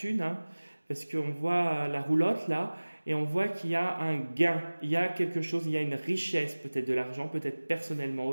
hein, parce qu'on voit la roulotte là, et on voit qu'il y a un gain, il y a quelque chose, il y a une richesse, peut-être de l'argent, peut-être personnellement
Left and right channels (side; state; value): both; inverted; correlation -1.00